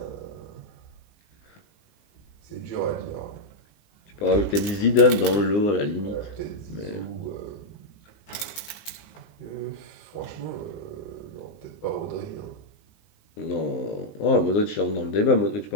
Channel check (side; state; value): right; late; 19 ms